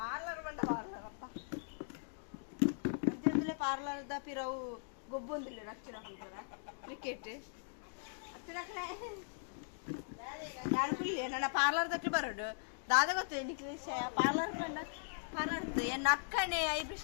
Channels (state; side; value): silent; right; digital silence